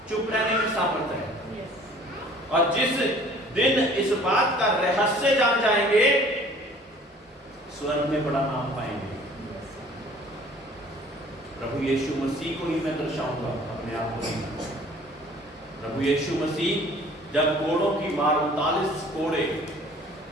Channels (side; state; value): both; normal; correlation 0.52